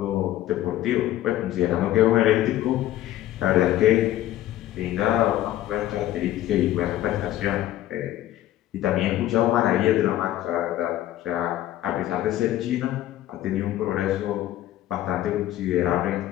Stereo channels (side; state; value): right; quieter; 13.8 dB